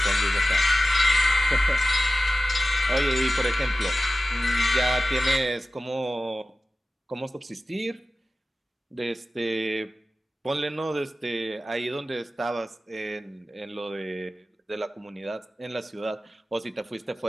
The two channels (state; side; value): normal; both; correlation 0.95